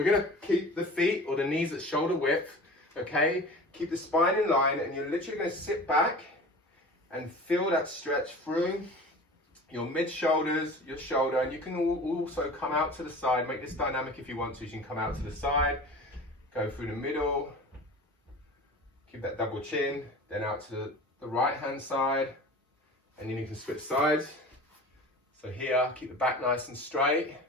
gonna keep the feet or the knees at shoulder width, okay? Keep the spine in line, and you're literally gonna sit back and feel that stretch through your mid-shoulders, your shoulder, and you can also come out to the side. Make this dynamic if you want to. You can come out to the side, go through the middle, keep that double chin, then out to the right-hand side, and then you can switch sides. So here, keep the back nice and straight.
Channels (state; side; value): normal; both; correlation 0.38